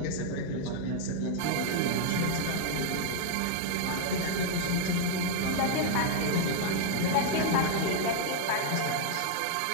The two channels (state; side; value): different; both; correlation 0.00